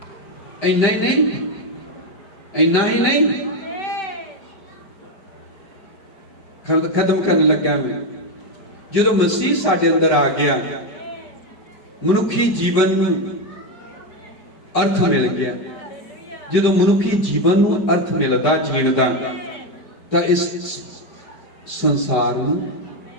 इन्ना ही नहीं, इन्ना ही नहीं, खत्म करने लगा मैं, जो मसीह साडे अंदर आ गया, मनुखी जीवन में अर्थ मिल गया। जो मनुखी जीवन में अर्थ मिलता जीण का, तो इस संसार में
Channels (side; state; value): right; late; 5.2 ms